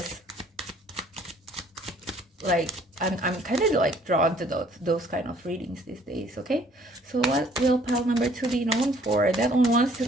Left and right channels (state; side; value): normal; both; correlation 0.60